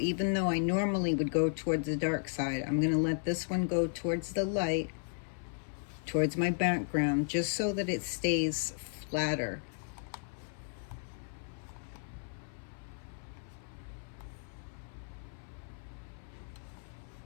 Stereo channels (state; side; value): silent; right; 55 dB below the other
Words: though I normally would go towards the dark side, I'm going to let this one go towards the light, towards my background, just so that it stays flatter.